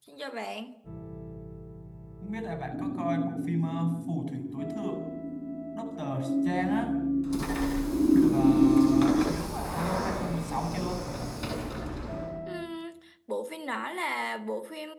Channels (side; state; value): both; identical; correlation 1.00